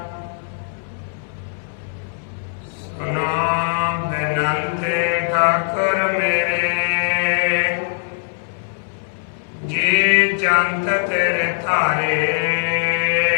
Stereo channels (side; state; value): right; silent; 63 dB below the other